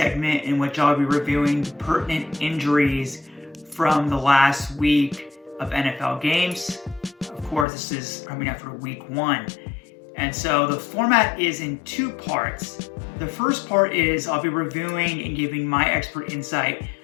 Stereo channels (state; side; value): drops out; right; at 7.7 s